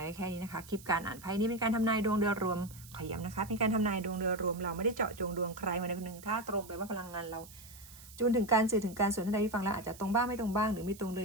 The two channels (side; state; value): right; noise; hiss, 19 dB below the sound